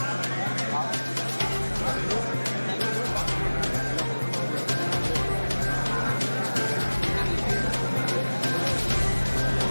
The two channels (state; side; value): inverted; both; correlation -1.00